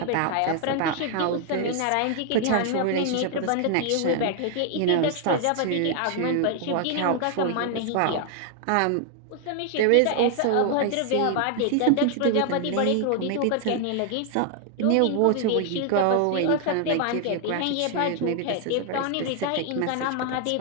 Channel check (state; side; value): different; both; correlation 0.00